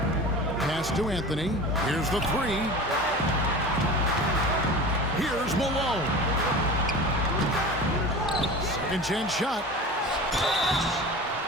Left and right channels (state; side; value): normal; both; correlation 0.34